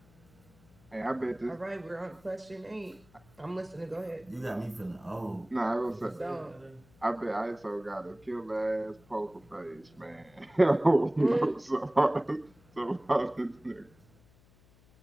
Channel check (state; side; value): noise; left; hum, 28 dB below the sound